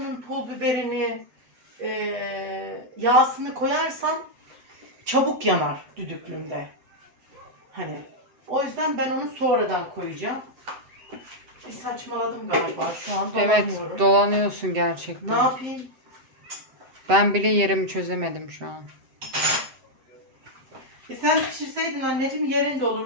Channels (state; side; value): late; left; 7.8 ms